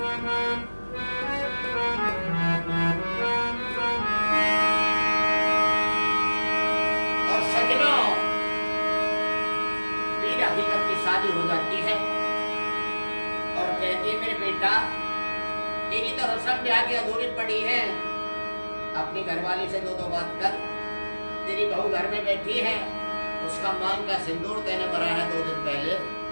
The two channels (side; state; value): both; inverted; correlation -1.00